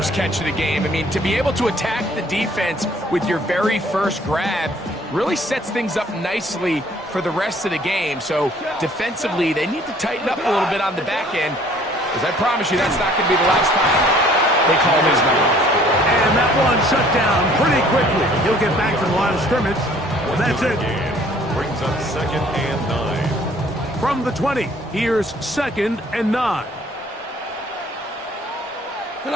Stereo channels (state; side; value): normal; both; correlation 0.57